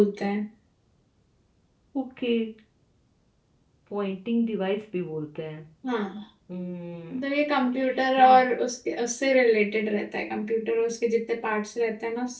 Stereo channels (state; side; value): identical; both; correlation 1.00